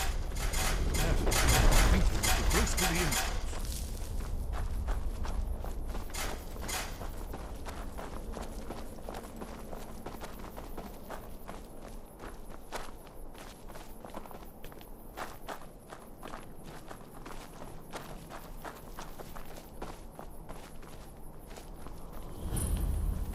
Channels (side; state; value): both; identical; correlation 1.00